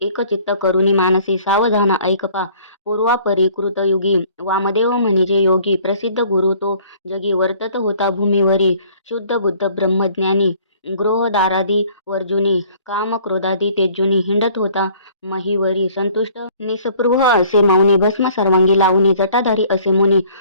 एकचित्त करुणी मानसी सावधान ऐकपा पूर्वापरी कृतयुगी वामदेव म्हणजे योगी प्रसिद्ध गुरु तो जगी वर्तत होता भूमीवरी शुद्ध बुद्ध ब्रह्मज्ञानी गृहदारादी वर्जुनी काम क्रोधादी तेजुनी हिंडत होता महीवरी संतुष्ट निस्पृह असे मौनी भस्म सर्वांगी लावणी जटाधारी असे मुनी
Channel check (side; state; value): both; inverted; correlation -0.56